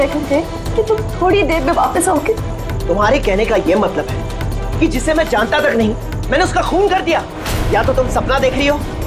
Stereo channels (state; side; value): identical; both; correlation 1.00